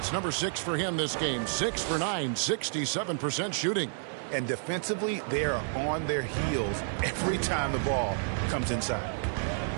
number 6 for him this game. 6 for 9, 67% shooting. And defensively, they are on their heels every time the ball comes inside.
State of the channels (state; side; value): silent; left; digital silence